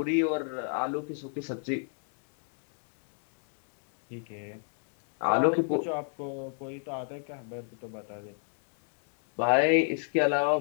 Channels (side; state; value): right; silent; 57 dB below the other